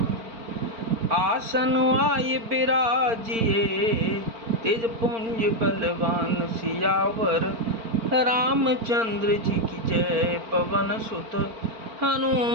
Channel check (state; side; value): late; left; 4.4 ms